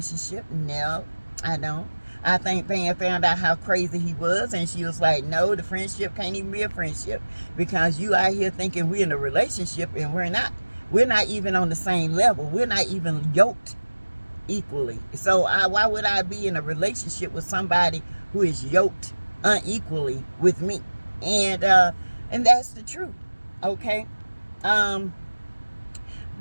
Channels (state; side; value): inverted; both; correlation -1.00